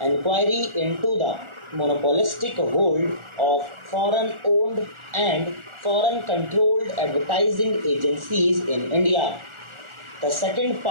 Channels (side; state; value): left; late; 1.4 ms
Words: inquiry into the monopolistic hold of foreign owned and foreign controlled advertising agencies in India. The second